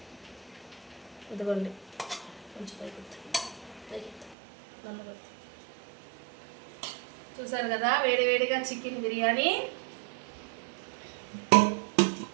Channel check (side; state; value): left; drops out; at 4.4 s